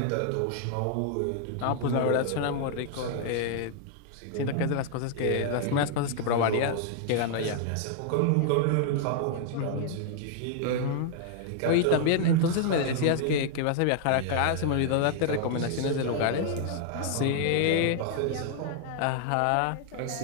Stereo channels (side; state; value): both; different; correlation 0.00